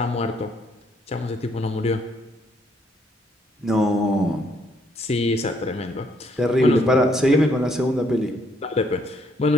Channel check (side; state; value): both; normal; correlation 0.70